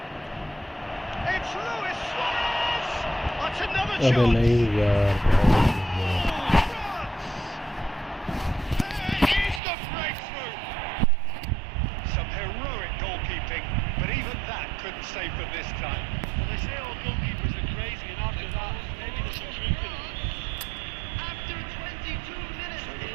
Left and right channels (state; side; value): drops out; left; at 9.6 s